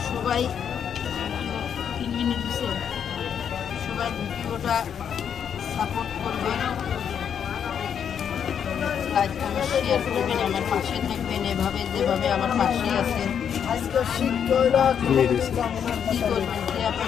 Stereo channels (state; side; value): quieter; right; 8.1 dB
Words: সবাই 3 মিনিট দিচ্ছে, সবাই ভিডিওটা সাপোর্ট করবেন, লাইক কমেন্ট শেয়ার করবেন, আমার পাশে থাকবেন এভাবে যেভাবে আমার পাশে আছেন। কি করবেন?